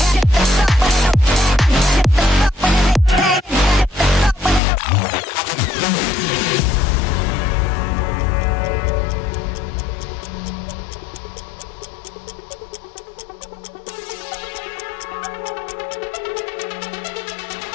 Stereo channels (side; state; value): right; drops out; at 4.6 s